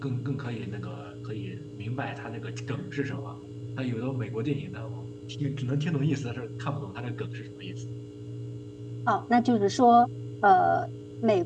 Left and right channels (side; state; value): both; identical; correlation 1.00